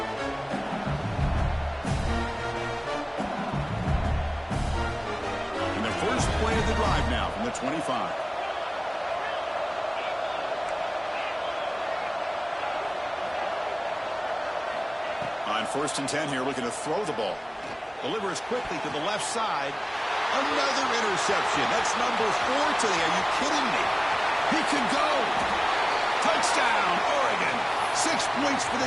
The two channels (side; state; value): both; identical; correlation 1.00